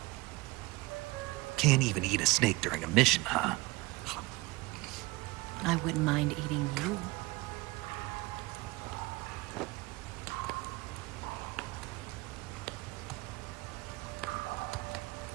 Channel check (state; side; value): quieter; left; 21.9 dB